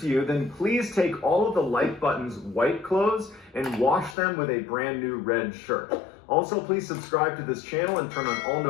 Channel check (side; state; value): right; drops out; at 4.2 s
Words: to you, then please take all of the like button's white clothes and wash them with a brand new red shirt. Also, please subscribe to this channel and turn on all